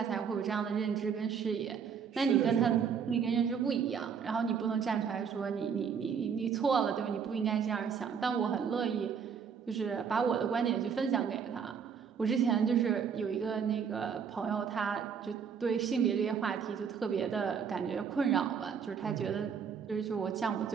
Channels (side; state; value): left; quieter; 6.9 dB